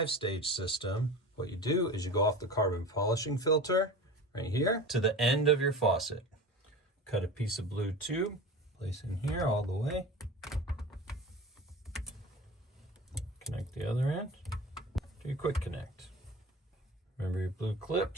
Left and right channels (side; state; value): both; normal; correlation 0.33